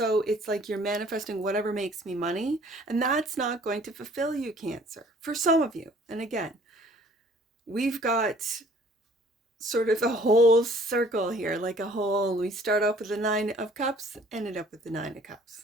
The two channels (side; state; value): both; normal; correlation 0.55